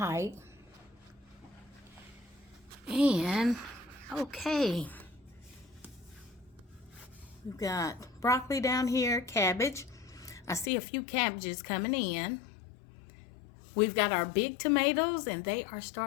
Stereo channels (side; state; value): right; drops out; at 10.7 s